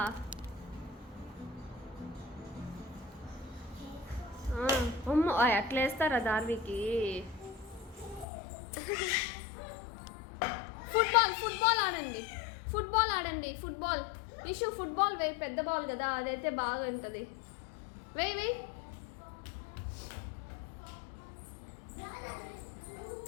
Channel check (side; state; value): right; drops out; at 8.2 s